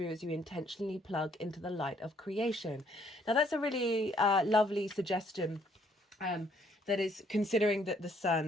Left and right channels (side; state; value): both; normal; correlation 0.66